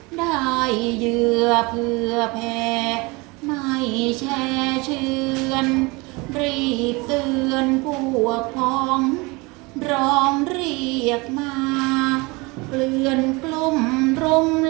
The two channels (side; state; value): left; quieter; 25.8 dB